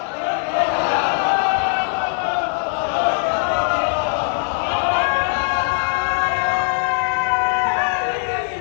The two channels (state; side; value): silent; right; digital silence